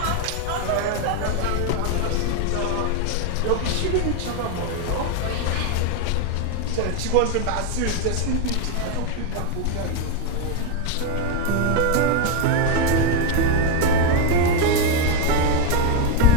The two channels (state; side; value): different; both; correlation 0.01